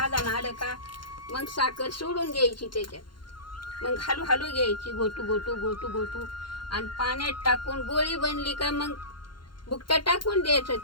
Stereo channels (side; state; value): right; late; 0.72 ms